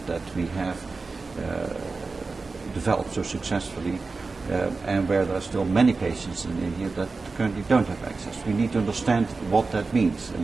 we have developed so successfully, and where there are still many patients in India that currently don't have access. We need to understand what that means, and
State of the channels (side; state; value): left; quieter; 4.0 dB